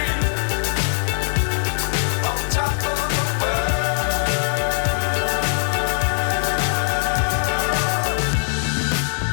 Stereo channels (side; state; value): right; silent; digital silence